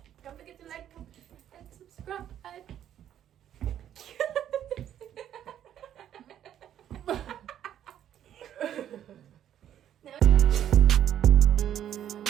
Don't forget to like, comment, and subscribe.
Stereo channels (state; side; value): quieter; left; 10.6 dB